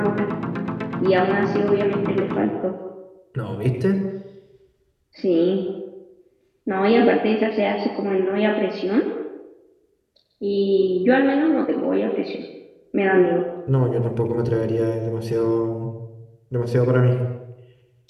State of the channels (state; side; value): identical; both; correlation 1.00